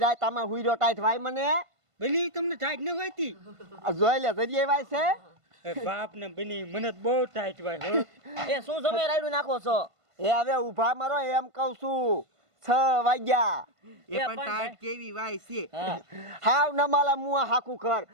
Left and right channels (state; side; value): late; left; 1.5 ms